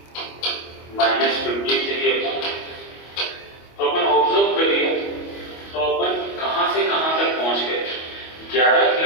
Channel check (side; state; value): right; late; 25 ms